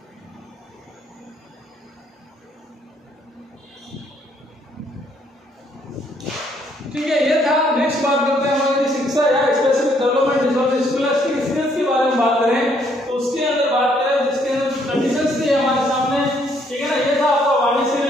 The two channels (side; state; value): both; normal; correlation 0.68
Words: ठीक है, ये था। नेक्स्ट बात करते हैं हमारी शिक्षा या specific development disorder scholastic skills के बारे में बात करें तो उसके अंदर बात करें जिसके अंदर कंडीशंस थी हमारे सामने, ठीक है ना। ये था आपका वाणी से